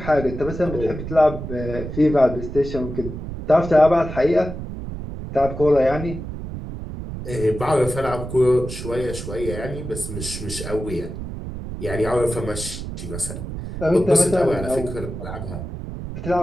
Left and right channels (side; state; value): right; noise; rumble, 8 dB below the sound